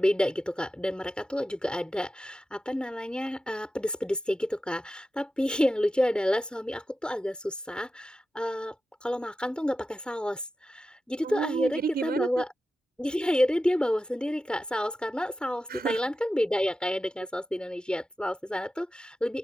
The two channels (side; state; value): both; normal; correlation 0.92